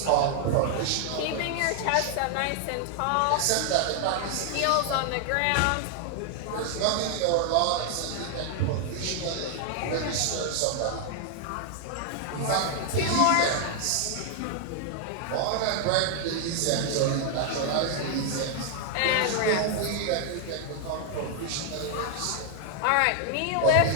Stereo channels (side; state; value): both; different; correlation 0.00